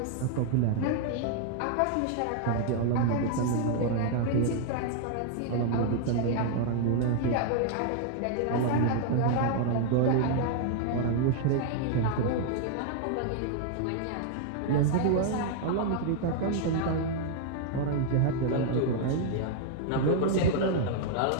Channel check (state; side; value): different; both; correlation 0.00